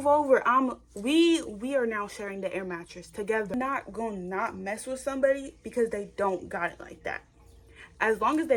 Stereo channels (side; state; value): both; identical; correlation 1.00